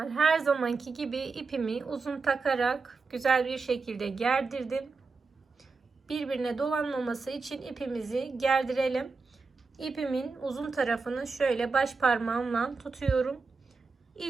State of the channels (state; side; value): quieter; left; 4.4 dB